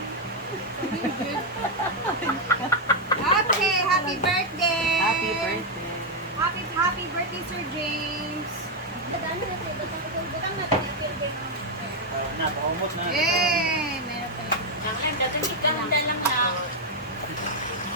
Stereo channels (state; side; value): normal; both; correlation 0.01